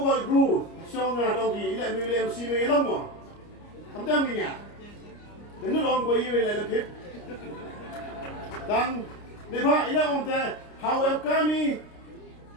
guru, song ada lagi, ilmu MC Ialong mah, kamu ni ya, dengan orang boy ini lagi, dan lepas Ialong teh, how kami,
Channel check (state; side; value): late; right; 29 ms